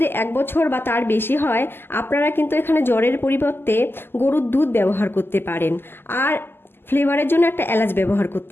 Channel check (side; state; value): right; late; 0.11 ms